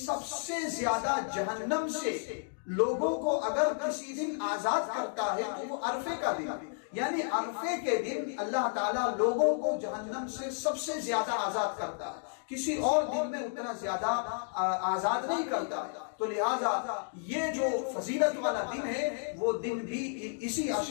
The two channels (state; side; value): silent; right; digital silence